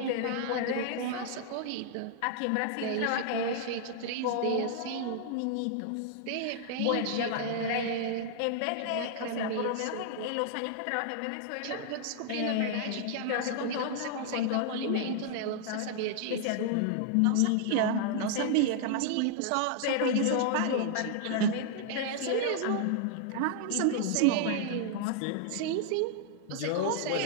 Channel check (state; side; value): different; both; correlation -0.01